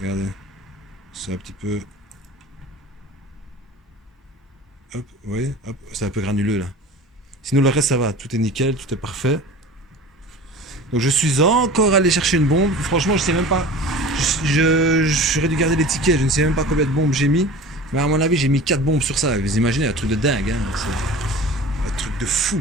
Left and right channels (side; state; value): both; normal; correlation 0.38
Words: Regardez. C'est un petit peu. Hop, vous voyez? Hop, c'est un peu granuleux là. Sinon le reste ça va, tout est nickel, tout est parfait. Donc je suis encore allé chercher une bombe. Franchement je sais même pas. J'aurais dû garder les tickets, je ne sais même pas combien de bombes j'ai mis. Mais à mon avis j'ai mis 4 bombes sur ça. Vous imaginez un truc de dingue, hein. C'est un truc de